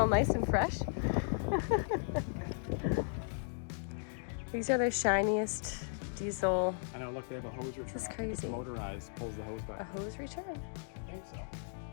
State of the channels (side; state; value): right; silent; digital silence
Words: nice and fresh. These are the shiniest diesel. I know, look, they have a hose return. This is crazy. It's motorized, pulls the hose back. A hose return? I think so.